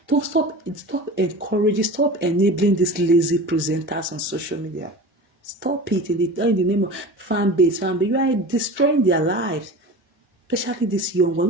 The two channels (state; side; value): normal; both; correlation 0.34